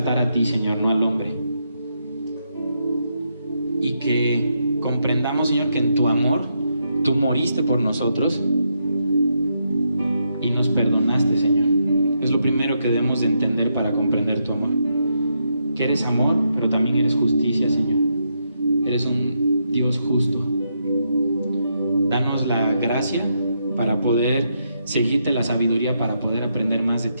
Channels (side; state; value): both; inverted; correlation -0.80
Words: a ti, Señor, no al hombre. Y que comprendamos, Señor, que en tu amor tú moriste por nosotros y nos perdonaste, Señor. Es lo primero que debemos de entender para comprender tu amor. Que eres amor, pero también eres justicia, Señor. Eres un Dios justo. Danos la gracia para poder seguirte, la sabiduría para poder aprender más de